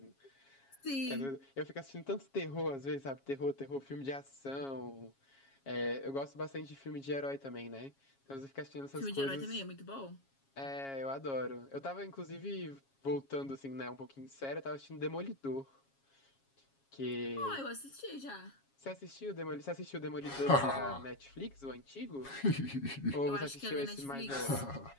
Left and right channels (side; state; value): right; late; 7.3 ms